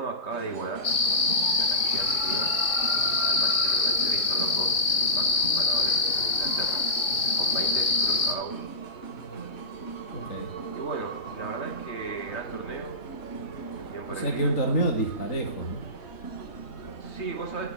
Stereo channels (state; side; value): late; right; 3.5 ms